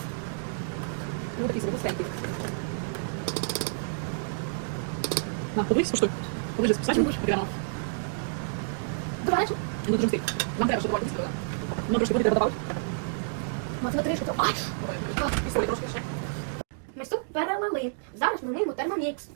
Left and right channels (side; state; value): left; silent; digital silence